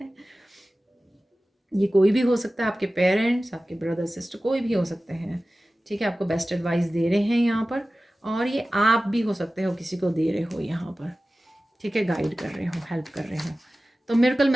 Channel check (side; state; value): both; normal; correlation 0.96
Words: ये कोई भी हो सकता है, आपके पेरेंट्स, आपके ब्रदर सिस्टर, कोई भी हो सकते हैं, ठीक है। आपको बेस्ट एडवाइस दे रहे हैं यहाँ पर, और ये आप भी हो सकते हो, किसी को दे रहे हो यहाँ पर, ठीक है, गाइड कर रहे हो, हेल्प कर रहे हो। तो मिरेकल